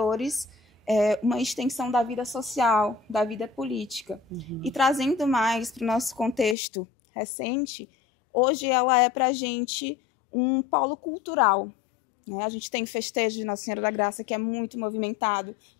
uma extensão da vida social, da vida política. E trazendo mais para o nosso contexto recente, hoje ela é para a gente um polo cultural. A gente tem festejo de Nossa Senhora da Graça, que é muito movimentado,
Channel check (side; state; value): right; drops out; at 6.6 s